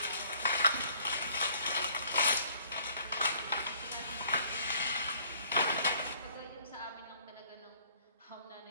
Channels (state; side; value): inverted; both; correlation -0.60